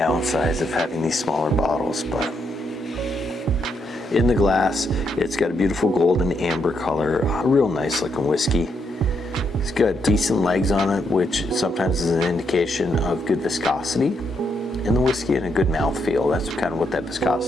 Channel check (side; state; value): both; normal; correlation 0.78